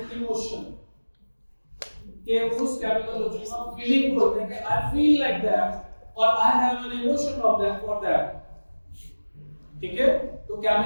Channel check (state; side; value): inverted; both; correlation -1.00